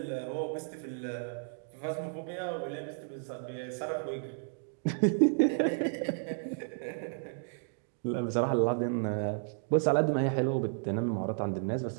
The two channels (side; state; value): left; silent; digital silence